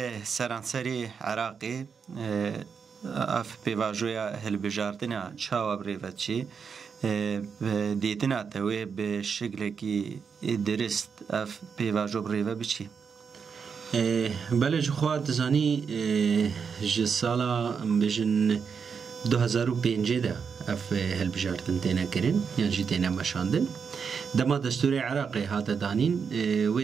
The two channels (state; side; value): quieter; left; 6.2 dB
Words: سرانسری عراقی اف پیواژویا هلبجارتنا چاوا بریوتچی دیتنا توی به شکلی که درست اف پیواژو بریوت بچی بله جوخواد زانی جسالا بجن 2005 ده اف هلبجارتن تینا کرن یعنی جی تینا مشاندن دما دستور عراقی هات دانین